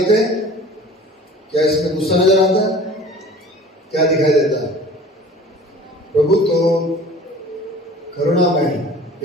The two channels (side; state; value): both; normal; correlation 0.44